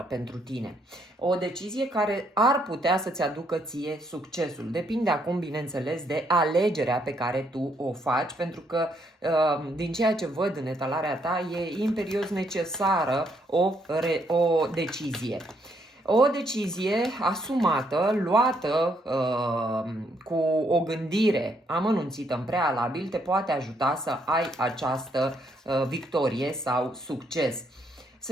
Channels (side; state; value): both; normal; correlation 0.73